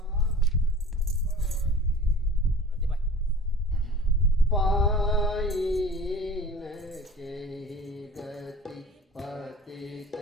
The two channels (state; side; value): normal; both; correlation 0.42